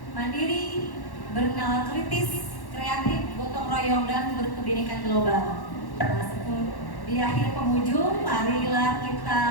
mandiri, bernalar kritis, kreatif, gotong royong, dan berkebinekaan global. Nah, di akhir penghujung, marilah kita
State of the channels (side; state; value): right; late; 1.1 ms